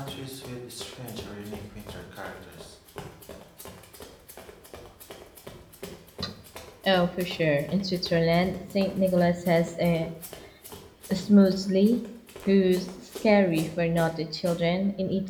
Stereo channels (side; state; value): both; identical; correlation 1.00